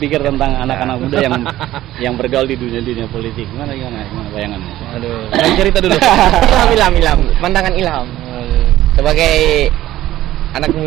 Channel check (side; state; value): left; quieter; 14.6 dB